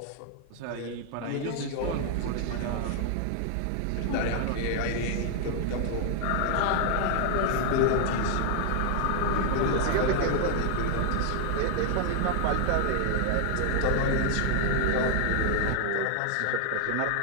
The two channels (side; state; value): both; different; correlation 0.00